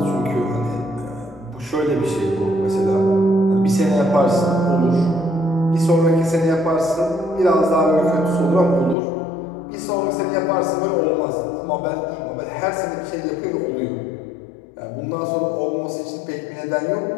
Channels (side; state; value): right; drops out; at 9.0 s